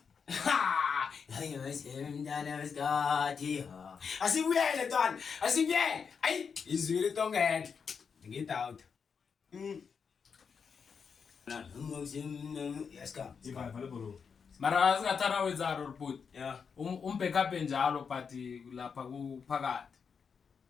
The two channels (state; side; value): quieter; right; 6.1 dB